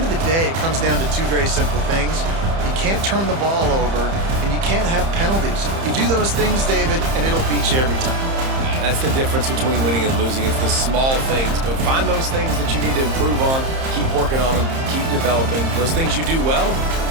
of the day, it comes down to two very simple things. You can't turn the ball over, and you can't have penalties. You do those things, David, and it'll beat you every time. That's the difference between winning and losing. It's the small things, but find those things that you need to improve on, keep working on them, keep developing. Those things you do well,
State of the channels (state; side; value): late; left; 30 ms